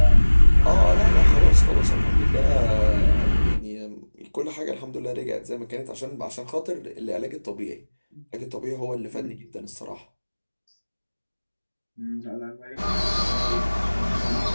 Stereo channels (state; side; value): inverted; both; correlation -1.00